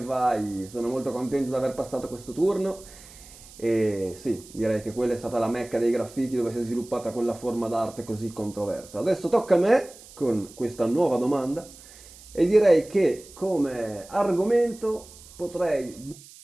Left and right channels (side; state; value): right; noise; hiss, 20 dB below the sound